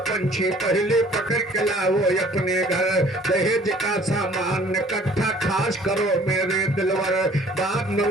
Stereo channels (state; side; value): normal; both; correlation 0.54